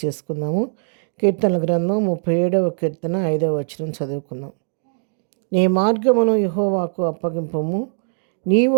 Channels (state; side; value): silent; left; digital silence